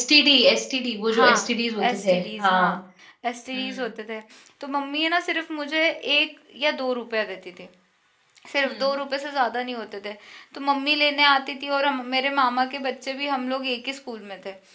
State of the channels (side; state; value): both; identical; correlation 1.00